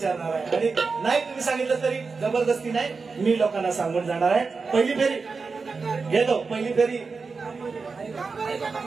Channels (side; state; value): left; quieter; 4.6 dB